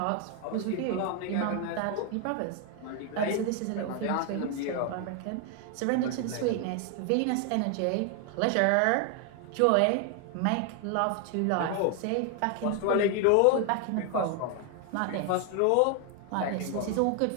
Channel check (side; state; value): both; different; correlation 0.01